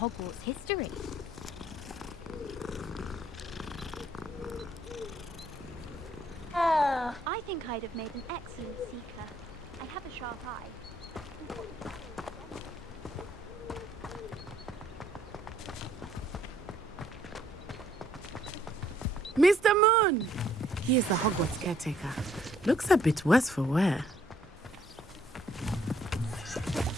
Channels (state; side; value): normal; both; correlation 0.65